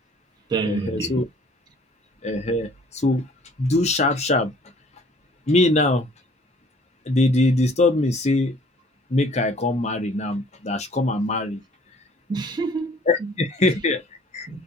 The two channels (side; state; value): both; normal; correlation 0.55